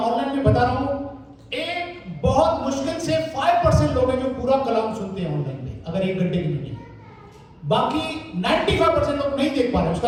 में बता रहा हूं, एक बहुत मुश्किल से 5% लोग हैं जो पूरा कलाम सुनते हैं ऑनलाइन में, अगर 1 घंटे की मीटिंग। बाकी 95% लोग नहीं देख पा रहे।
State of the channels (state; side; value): identical; both; correlation 1.00